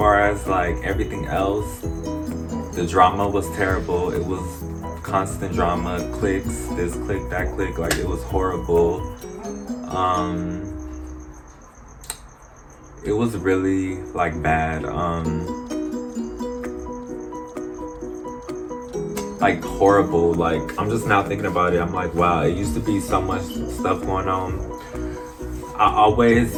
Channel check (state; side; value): identical; both; correlation 1.00